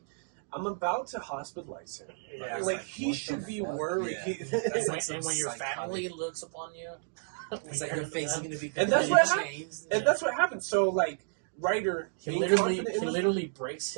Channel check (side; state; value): left; silent; digital silence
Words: I'm about to hospitalize him. Yeah, like he should be worried. Yeah. and when your family looks upon you, It's like your face is gonna be And that's what changed. And that's what happens. So like Ryder, he being literally confident in literally breaks